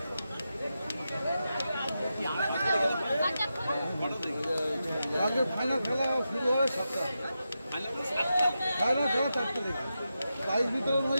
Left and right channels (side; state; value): both; inverted; correlation -0.89